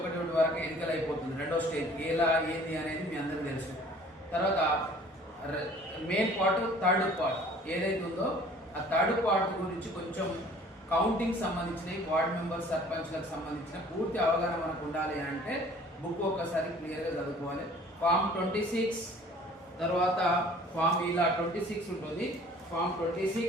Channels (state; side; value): normal; both; correlation 0.51